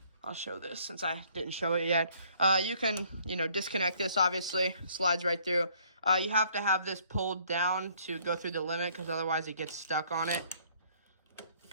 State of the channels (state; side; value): inverted; both; correlation -0.62